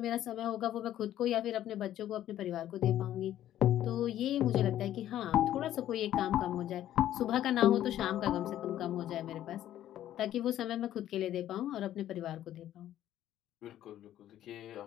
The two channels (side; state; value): right; quieter; 12.3 dB